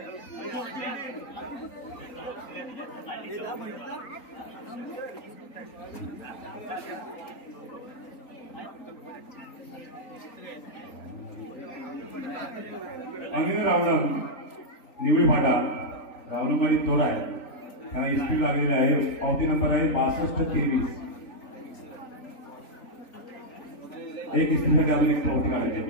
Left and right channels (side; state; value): right; late; 3.8 ms